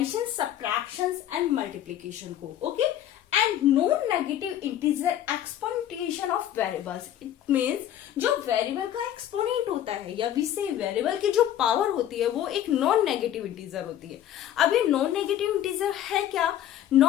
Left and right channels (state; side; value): quieter; right; 11.4 dB